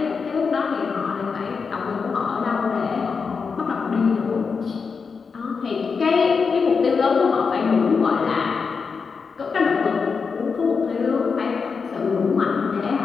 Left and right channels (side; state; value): right; quieter; 5.3 dB